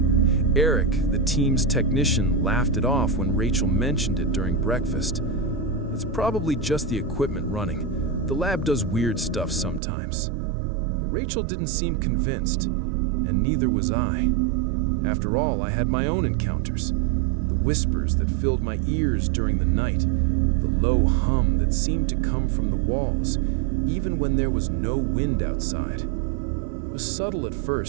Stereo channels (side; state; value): left; drops out; at 9.8 s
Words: Eric, the team's technician, laughed it off when Rachel mentioned it during breakfast. It's probably just the equipment running. The lab does weird stuff sometimes. But Rachel didn't seem convinced, and neither was I. After all, I had my own encounters. The whispers that filled my ears during the night, the low hum that seemed to come from the walls, even when there was no wind outside. It was subtle at